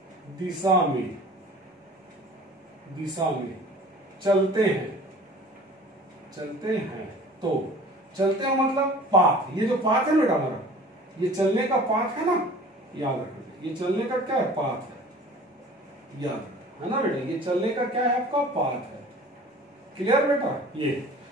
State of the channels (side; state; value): both; normal; correlation 0.45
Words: दिशा में, दिशा में चलते हैं, चलते हैं, तो चलते हैं मतलब पाथ, ये जो पाथ है बेटा हमारा, ये चलने का पाथ है ना, याद रखना, ये चलने का क्या है, पाथ है, याद है ना बेटा, ये चलने का क्या है आपका, पाथ है। क्लियर बेटा। ये